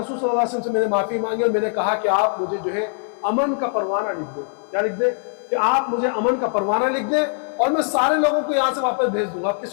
صلی اللہ علیہ وسلم سے میں نے معافی مانگی، اور میں نے کہا کہ آپ مجھے جو ہے امن کا پروانہ لکھ دیں۔ کیا لکھ دیں؟ کہ آپ مجھے امن کا پروانہ لکھ دیں، اور میں سارے لوگوں کو یہاں سے واپس بھیج دوں گا،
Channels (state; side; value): silent; right; 64 dB below the other